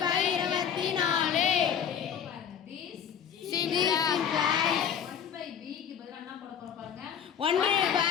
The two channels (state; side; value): quieter; right; 8.3 dB